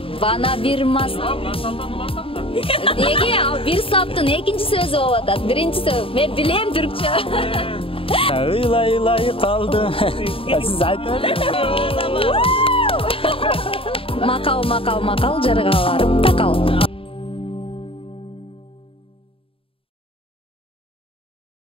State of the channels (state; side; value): late; right; 0.27 ms